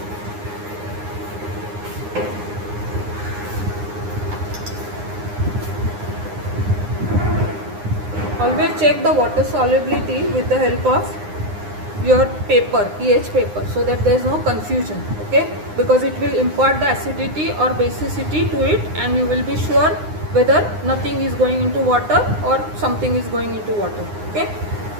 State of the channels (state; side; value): late; left; 9.7 ms